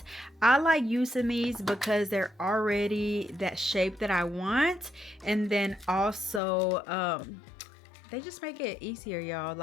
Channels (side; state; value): right; drops out; at 6.4 s